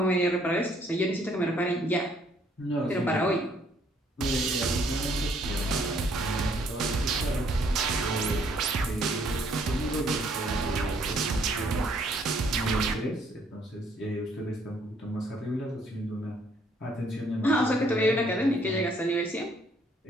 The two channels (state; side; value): normal; both; correlation 0.66